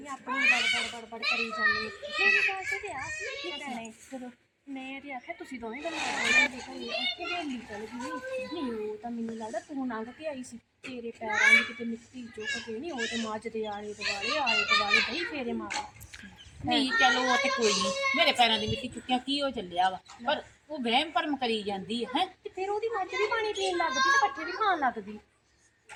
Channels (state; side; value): identical; both; correlation 1.00